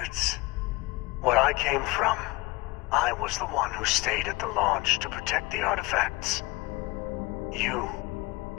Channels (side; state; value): right; quieter; 23.0 dB